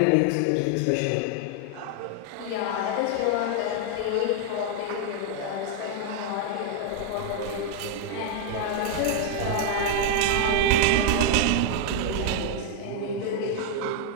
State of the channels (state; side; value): different; both; correlation 0.00